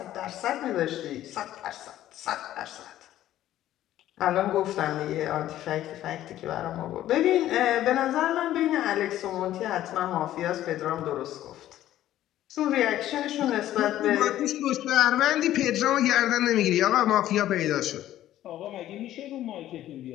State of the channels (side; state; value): right; quieter; 13.2 dB